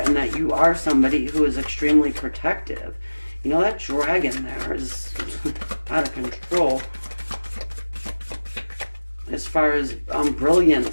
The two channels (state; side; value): inverted; both; correlation -1.00